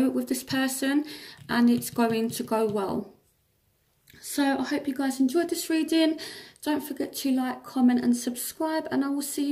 with this person and it's going to go well. So I hope you guys enjoyed this reading. Don't forget to like, comment and subscribe, and I will see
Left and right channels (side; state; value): both; identical; correlation 1.00